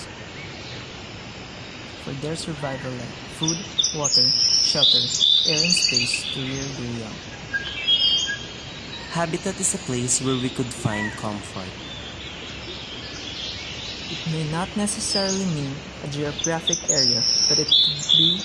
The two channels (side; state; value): both; identical; correlation 1.00